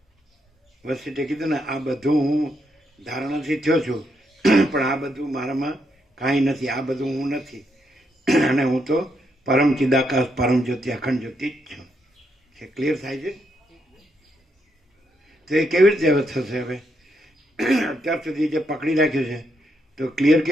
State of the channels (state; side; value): normal; both; correlation 0.78